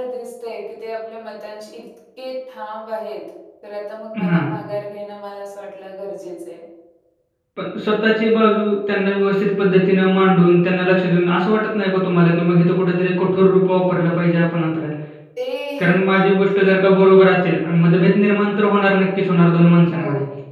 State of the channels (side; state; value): both; identical; correlation 1.00